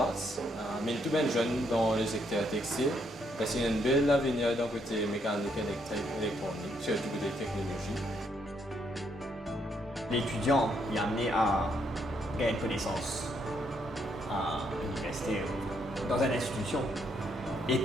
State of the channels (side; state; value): both; normal; correlation 0.73